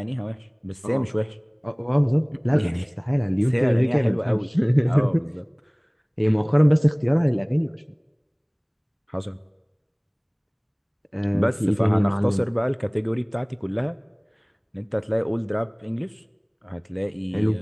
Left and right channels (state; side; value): identical; both; correlation 1.00